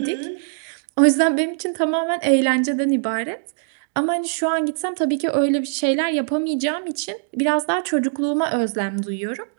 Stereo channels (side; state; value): left; silent; digital silence